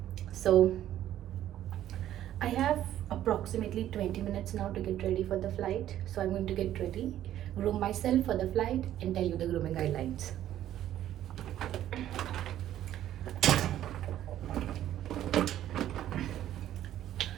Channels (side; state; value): left; quieter; 12.2 dB